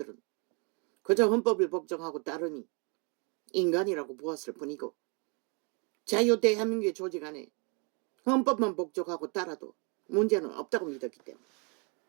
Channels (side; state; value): left; quieter; 34.2 dB